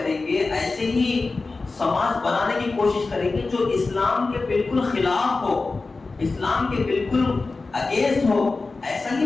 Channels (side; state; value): right; quieter; 3.7 dB